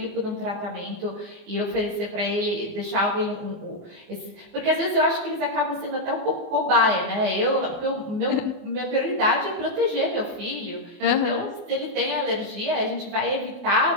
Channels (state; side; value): late; left; 24 ms